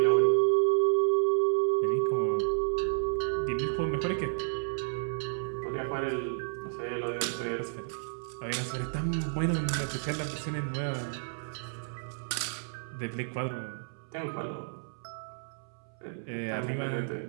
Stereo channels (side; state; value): left; silent; 57 dB below the other